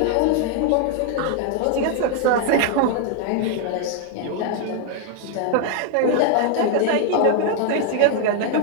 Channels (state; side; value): different; both; correlation 0.00